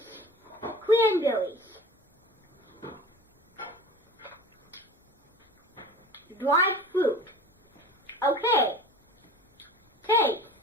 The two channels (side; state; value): both; normal; correlation 0.37